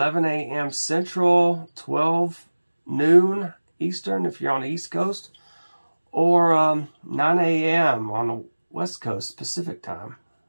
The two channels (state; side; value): inverted; both; correlation -1.00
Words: a.m. Central, 12 noon Eastern if you're on the East Coast, or 9 a.m. on the West Coast Pacific time.